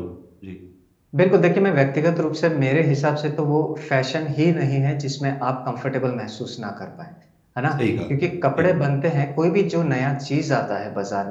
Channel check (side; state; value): both; identical; correlation 1.00